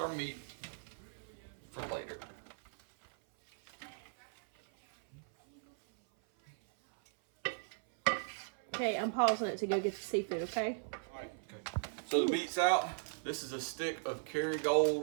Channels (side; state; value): left; silent; 53 dB below the other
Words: meat for later. Okay, I'm pausing it to go get the seafood, okay? Alright, okay. So the meat's out. This is a stick of